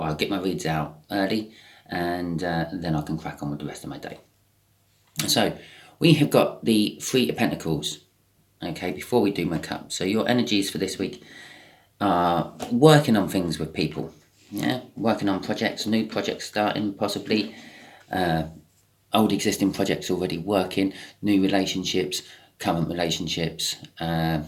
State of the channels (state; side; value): identical; both; correlation 1.00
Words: get my reads out early and then I can crack on with the rest of my day. So we have got the Three of Pentacles, okay, before we do my cup. So your energies for this week are working on things with people, yeah, working on projects, new projects starting possibly, old existing projects already working, new relationships, current relationships,